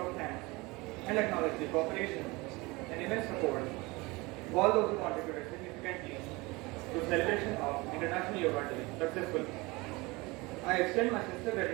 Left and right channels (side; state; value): left; quieter; 23.8 dB